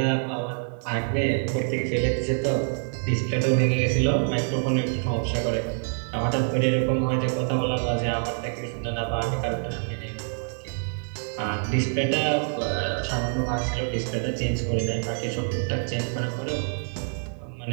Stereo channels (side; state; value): left; silent; 61 dB below the other